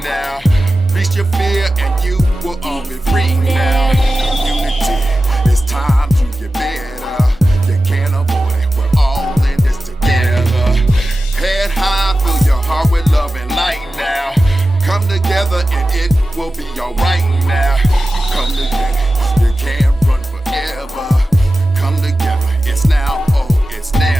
now. Reach your fear and you will all be free now. Community, it's time to get better. You can't avoid it, we're all in this together. Head high, fill your heart with love and light now. Come together and it will be alright now. Come together, you can't run forever. Come together, it's now, oh, it's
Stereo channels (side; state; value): both; normal; correlation 0.94